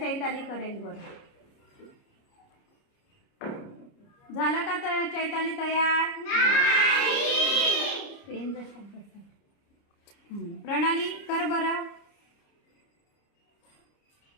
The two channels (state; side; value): late; right; 30 ms